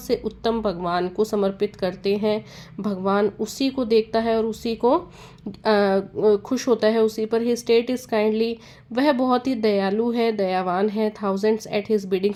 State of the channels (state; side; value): identical; both; correlation 1.00